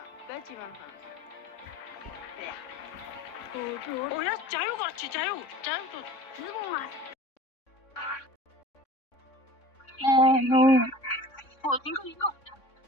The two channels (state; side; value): late; right; 3.6 ms